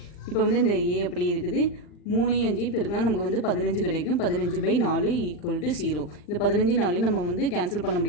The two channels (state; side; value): late; right; 40 ms